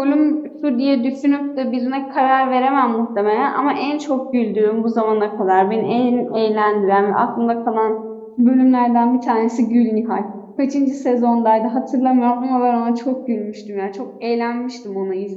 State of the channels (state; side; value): identical; both; correlation 1.00